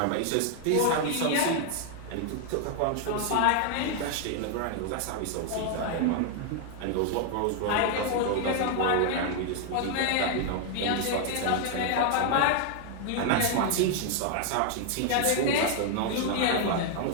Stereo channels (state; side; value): different; both; correlation 0.00